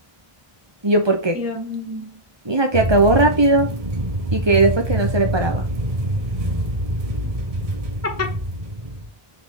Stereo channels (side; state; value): left; late; 1.2 ms